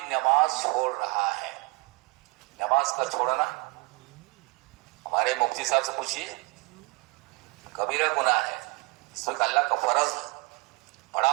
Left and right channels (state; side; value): quieter; left; 27.5 dB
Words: نماز چھوڑ رہا ہے۔ نماز کا چھوڑنا ہمارے مفتی صاحب سے پوچھیے، کبیرہ گناہ ہے، اس میں اللہ کا فرض بڑا